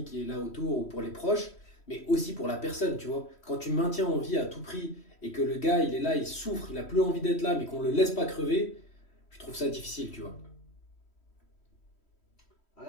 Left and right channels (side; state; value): right; late; 3.1 ms